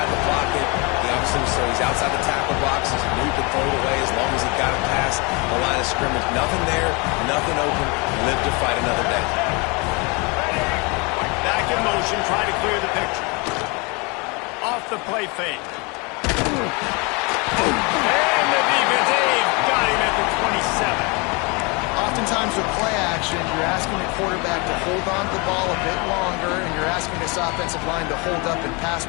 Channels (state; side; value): quieter; right; 29.2 dB